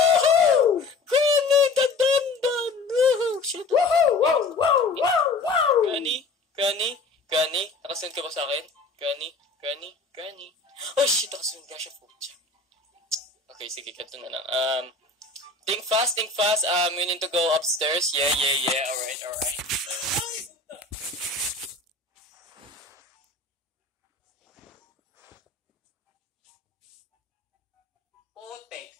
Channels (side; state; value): right; quieter; 3.5 dB